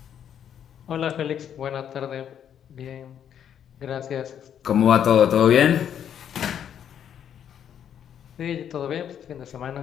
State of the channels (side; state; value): right; quieter; 9.2 dB